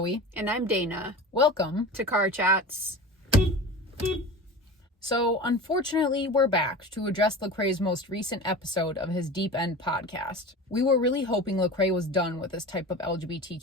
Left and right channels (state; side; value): normal; both; correlation 0.33